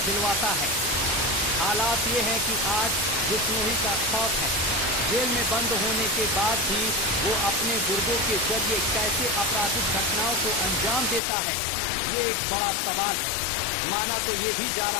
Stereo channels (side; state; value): right; drops out; at 11.2 s